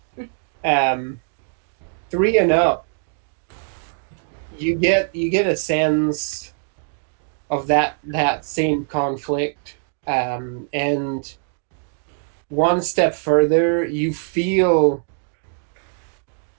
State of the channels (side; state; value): left; silent; digital silence